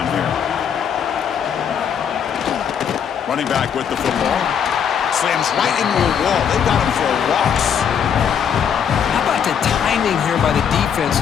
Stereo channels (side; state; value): right; quieter; 7.9 dB